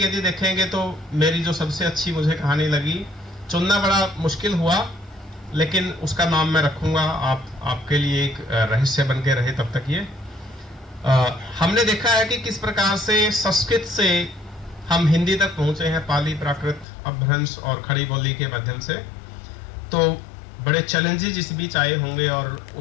देखेंगे तो मेरी जो सबसे अच्छी मुझे कहानी लगी, चुनना बड़ा मुश्किल हुआ, लेकिन उसका नाम मैं रखूँगा। आपके लिए एक रहस्य बन के रहे तब तक ये। हमने देखा है कि किस प्रकार से संस्कृत से हम हिंदी तक पहुंचे हैं, पाली, प्राकृत, अपभ्रंश और खड़ी बोली के माध्यम से। तो बड़े चैलेंजेस इस बीच आए होंगे और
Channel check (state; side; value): drops out; right; at 16.9 s